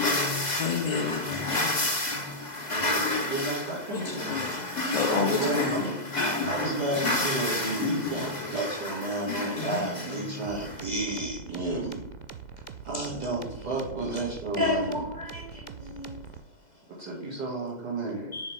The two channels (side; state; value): right; late; 2.0 ms